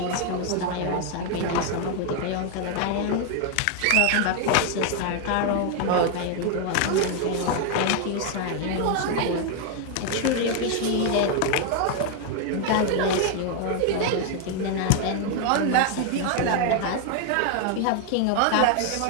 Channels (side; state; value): both; different; correlation 0.00